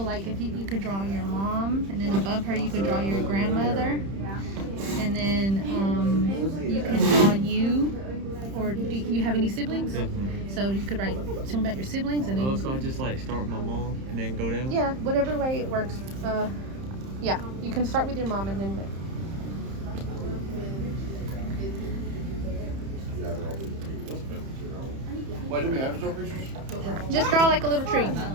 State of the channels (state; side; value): late; left; 31 ms